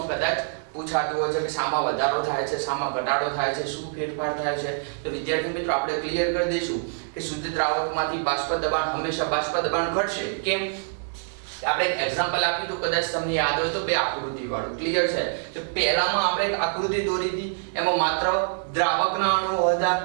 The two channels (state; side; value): silent; left; digital silence